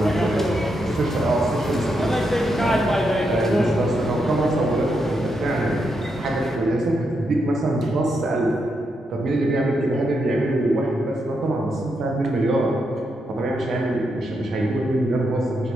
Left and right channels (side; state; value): both; normal; correlation 0.82